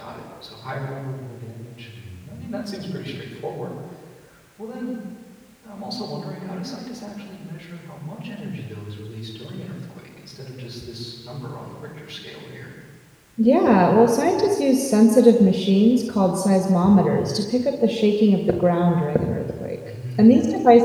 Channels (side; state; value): both; identical; correlation 1.00